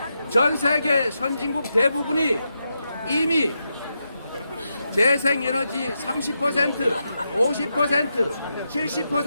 전 세계 선진국 대부분이 이미 재생에너지 30%, 50%,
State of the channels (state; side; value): inverted; both; correlation -0.86